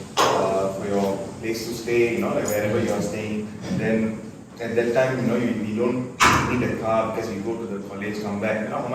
place to stay, you know, like wherever you are staying. Then at that time, you know, you don't need a car because you go to the college, come back, you know, how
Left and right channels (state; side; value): identical; both; correlation 1.00